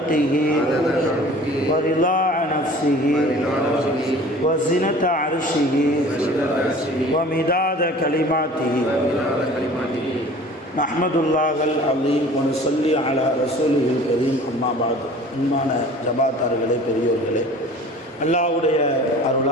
ورضاء نفسه وزنة عرشه ومداد كلماته نحمد الله العظيم ونصلي على رسوله الكريم أما بعد அன்பான ஜமாத்தார்களே, பெரியோர்களே, அல்லாஹ்வுடைய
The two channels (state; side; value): normal; both; correlation 0.45